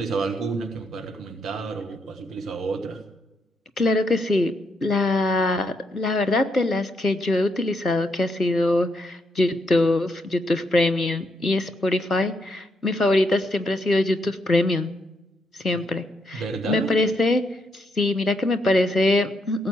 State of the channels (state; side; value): normal; both; correlation 0.78